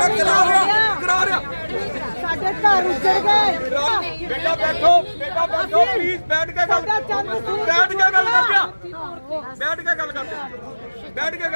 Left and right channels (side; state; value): both; inverted; correlation -1.00